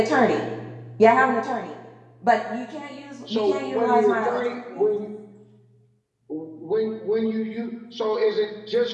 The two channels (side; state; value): both; identical; correlation 1.00